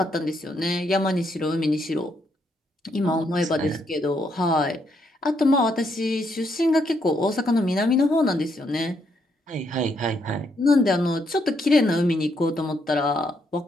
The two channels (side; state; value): both; normal; correlation 0.75